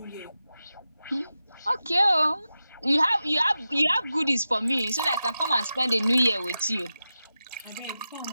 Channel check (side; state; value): both; inverted; correlation -0.92